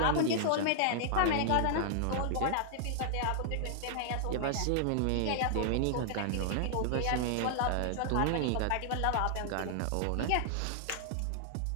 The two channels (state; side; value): different; both; correlation 0.00